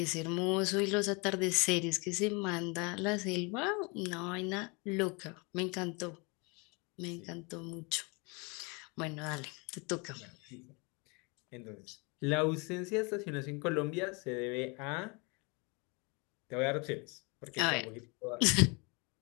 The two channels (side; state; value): right; quieter; 30.2 dB